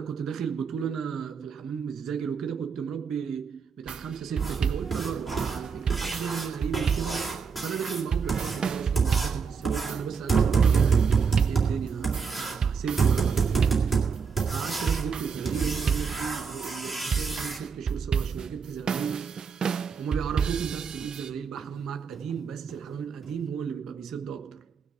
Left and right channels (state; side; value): quieter; left; 5.9 dB